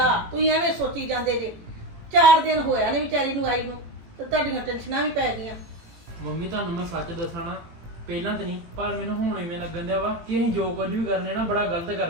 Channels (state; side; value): late; left; 18 ms